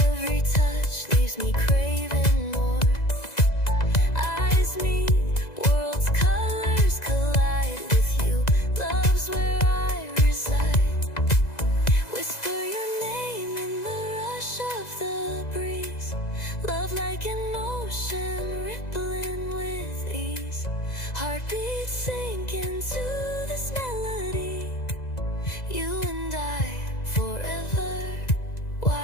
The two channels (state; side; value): late; right; 2.0 ms